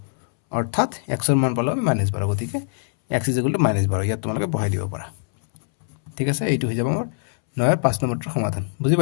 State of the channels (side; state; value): right; silent; 64 dB below the other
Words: অৰ্থাৎ x ৰ মান পালো আমি -12 গতিকে x = -12 ইয়াত তোমালোকে বহাই দিব পাৰা ঠিক আছে এইটো হৈ যাব আমাৰ 9 ৰ 5 নম্বৰটোৰ সমাধান বুজি